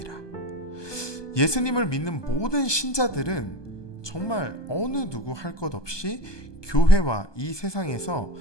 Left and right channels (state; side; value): late; right; 1.2 ms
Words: 예수님을 믿는 모든 신자들은 정말 어느 누구 할 것 없이 교회와 이 세상에서